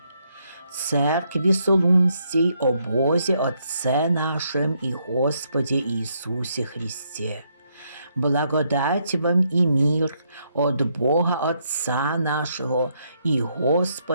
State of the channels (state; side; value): inverted; both; correlation -0.75